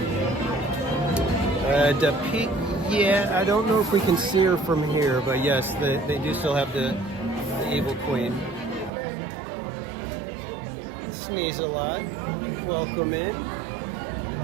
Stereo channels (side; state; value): left; drops out; at 8.9 s